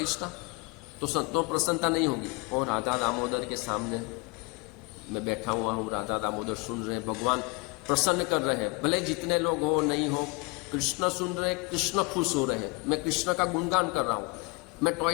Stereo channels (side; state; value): right; quieter; 27.6 dB